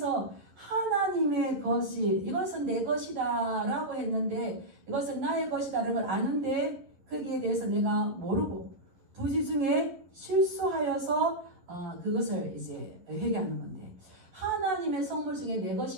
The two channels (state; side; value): late; left; 11 ms